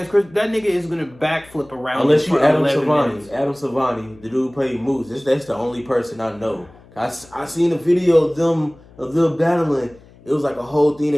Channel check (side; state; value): left; noise; hum, 25 dB below the sound